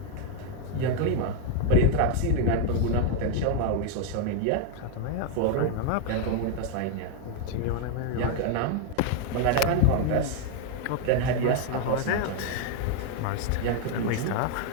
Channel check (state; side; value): different; both; correlation 0.00